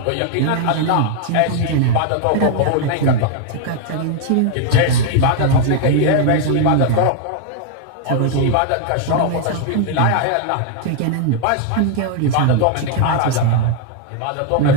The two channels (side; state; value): both; different; correlation 0.00